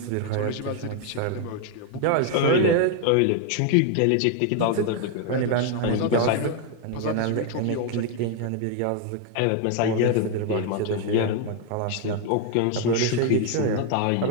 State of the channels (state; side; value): different; both; correlation 0.01